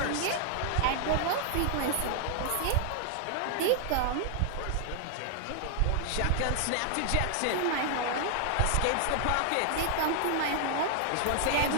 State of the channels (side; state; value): both; different; correlation 0.00